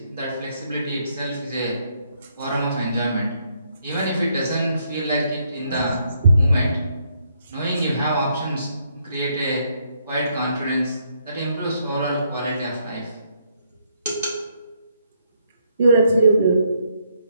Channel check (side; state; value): both; inverted; correlation -0.73